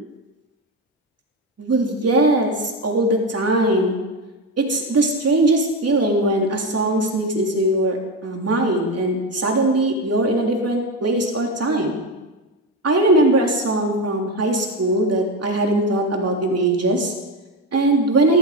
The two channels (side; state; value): both; normal; correlation 0.16